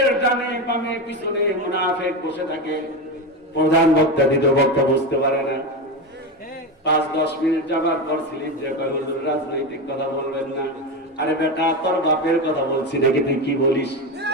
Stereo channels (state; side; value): normal; both; correlation 0.17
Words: ডানে বামে পিছনে মুনাফিক বসে থাকে। প্রধান বক্তা দ্বিতীয় বক্তা বুঝতে পারে না, 5-10 মিনিট যাবার পর স্লিপ যে হুজুর রাজনৈতিক কথা বলবেন না। আরে বেটা তোর বাপের কথা বলছি নাকি, তুই কি বলিস?